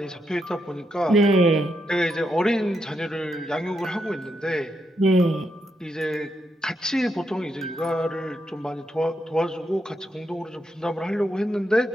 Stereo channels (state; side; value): normal; both; correlation 0.81